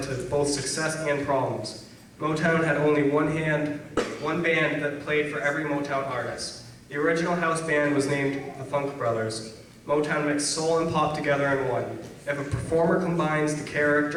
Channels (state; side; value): identical; both; correlation 1.00